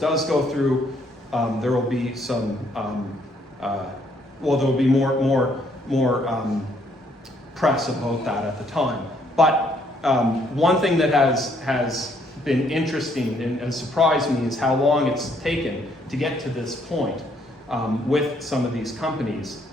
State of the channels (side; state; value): both; normal; correlation 0.68